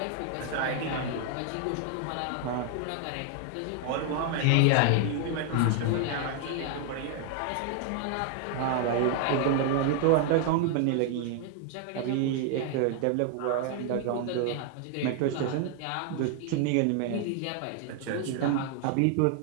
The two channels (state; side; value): different; both; correlation 0.00